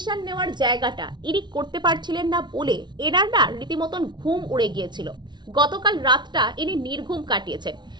নেওয়ার জায়গাটা ইনি করতে পারছিলেন না বলে এনার না রীতিমতন ঘুম উড়ে গিয়েছিল। গতকাল রাতটা ইনি নির্ঘুম কাটিয়েছেন,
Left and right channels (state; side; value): late; left; 0.21 ms